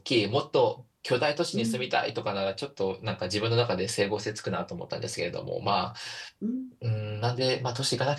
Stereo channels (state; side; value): identical; both; correlation 1.00